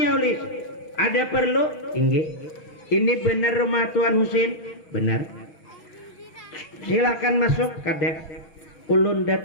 oleh ada perlu? Ini benar rumah Tuan Husin? Benar. Silakan masuk. Kada ulun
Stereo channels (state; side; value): late; right; 6.0 ms